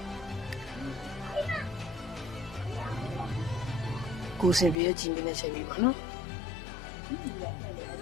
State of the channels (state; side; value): drops out; right; at 4.8 s